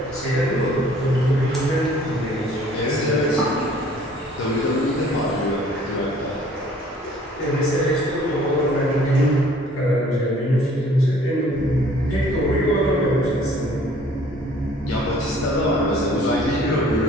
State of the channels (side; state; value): both; normal; correlation 0.55